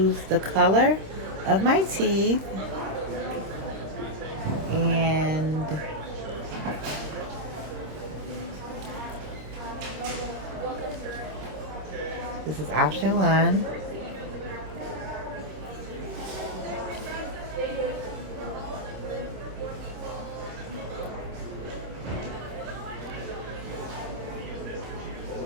the color of my teeth. And this is option 1.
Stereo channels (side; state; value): left; late; 26 ms